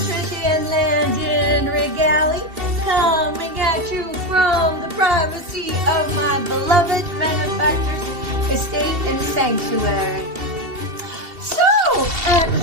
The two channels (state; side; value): late; left; 2.7 ms